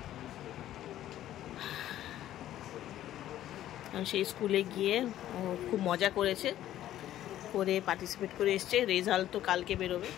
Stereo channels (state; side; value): quieter; right; 12.7 dB